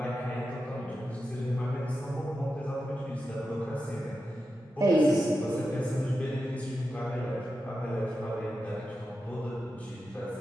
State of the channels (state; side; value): normal; both; correlation 0.90